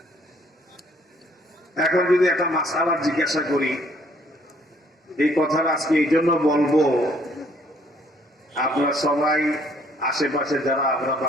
এখন যদি একটা মাসআলা জিজ্ঞাসা করি, এই কথাটা আজকে এই জন্য বলবো, আপনারা সবাই আশেপাশে যারা আমরা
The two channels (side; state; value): both; normal; correlation 0.63